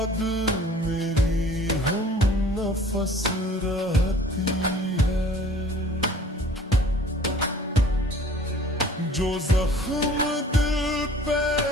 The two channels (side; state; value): both; normal; correlation 0.49